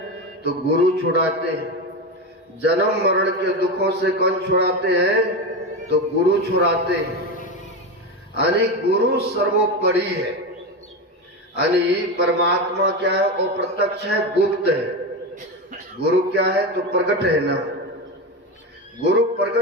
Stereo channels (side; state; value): both; normal; correlation 0.18